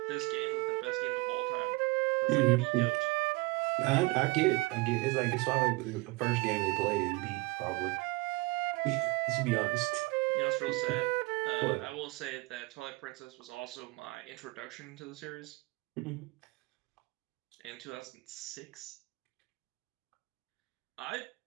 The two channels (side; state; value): left; quieter; 24.1 dB